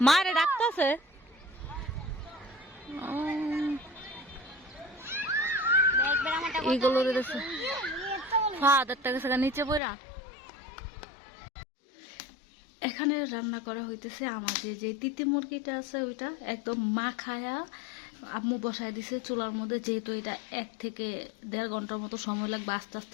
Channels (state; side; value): drops out; right; at 9.8 s